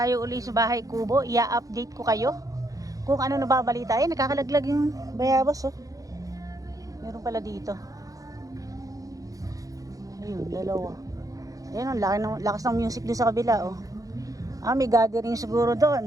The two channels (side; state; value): left; late; 0.17 ms